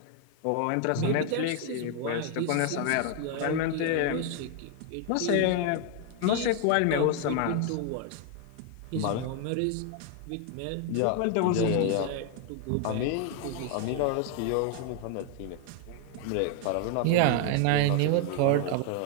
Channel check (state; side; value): different; both; correlation 0.00